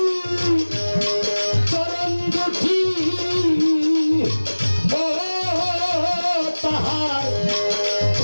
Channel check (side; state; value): both; inverted; correlation -1.00